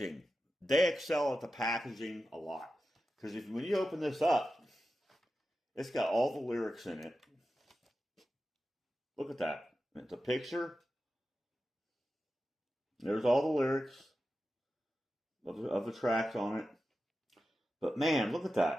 they excel at the packaging a lot. Because when you open this up, it's got all the lyrics in it. Look at that. It's a picture. There's all the lyrics of the tracks on it. But man, look at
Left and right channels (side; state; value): both; normal; correlation 0.92